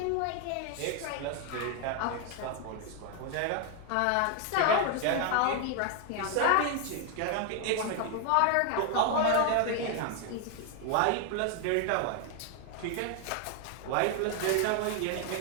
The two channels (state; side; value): different; both; correlation 0.01